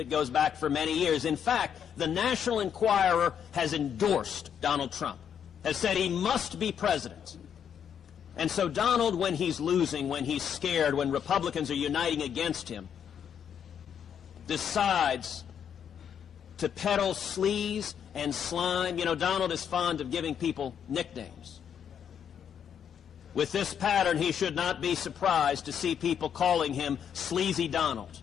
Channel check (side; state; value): right; quieter; 8.3 dB